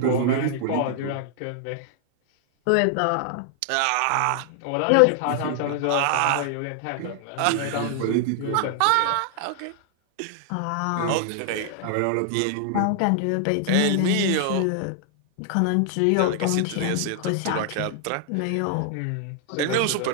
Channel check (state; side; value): different; both; correlation 0.00